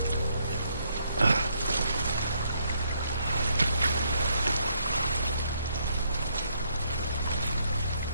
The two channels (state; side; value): inverted; both; correlation -0.72